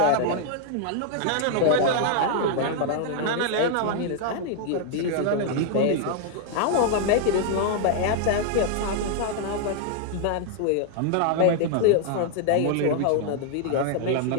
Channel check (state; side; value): different; both; correlation 0.00